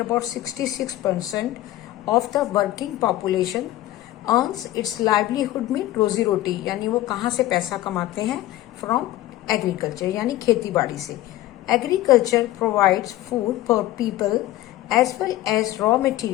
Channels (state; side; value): quieter; right; 15.3 dB